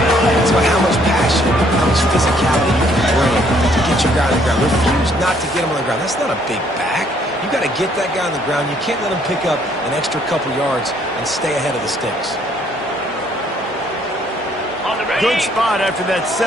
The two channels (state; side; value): normal; both; correlation 0.65